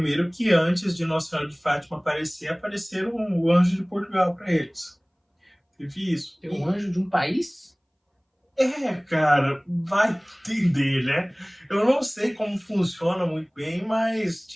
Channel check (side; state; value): both; identical; correlation 1.00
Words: que antes de Nossa Senhora de Fátima aparecer, apareceram o anjo de Portugal para eles. Teve isso. Tem um anjo de um país? Cara, vai entender, né? Eu não sei como funciona muito bem, mas